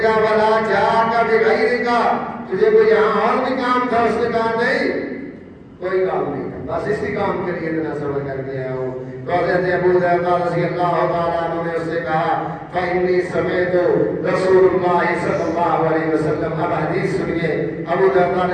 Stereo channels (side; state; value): both; identical; correlation 1.00